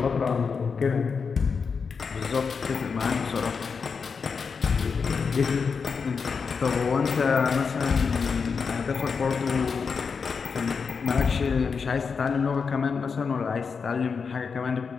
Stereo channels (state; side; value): quieter; right; 5.5 dB